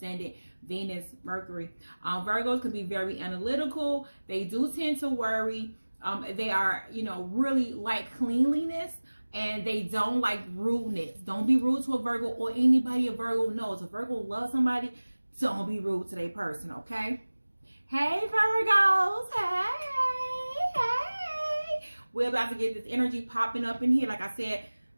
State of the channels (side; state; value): both; inverted; correlation -1.00